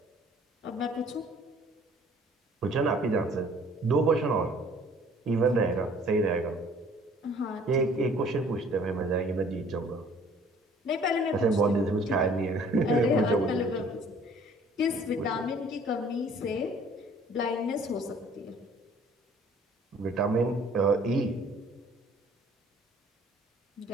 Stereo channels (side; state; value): both; normal; correlation 0.55